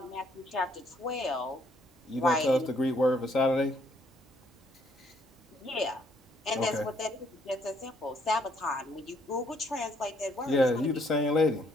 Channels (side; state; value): both; normal; correlation 0.68